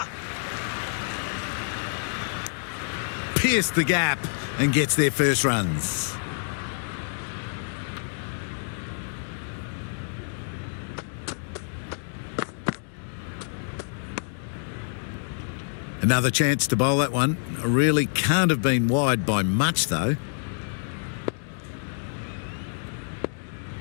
Pierced the gap and gets their first runs. Another chance to bowl that one. Really can't have been wide by much though.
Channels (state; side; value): silent; right; digital silence